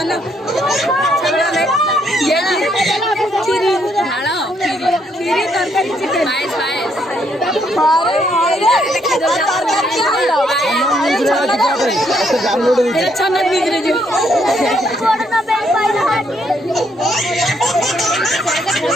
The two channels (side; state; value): both; normal; correlation 0.72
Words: चलो ये खीरी ढालो खीरी तरकारी चिकन पायस अरे चना बिगड़े जो